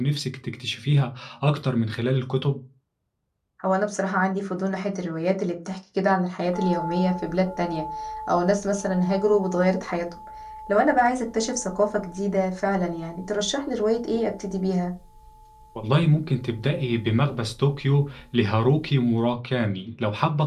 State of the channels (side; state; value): both; identical; correlation 1.00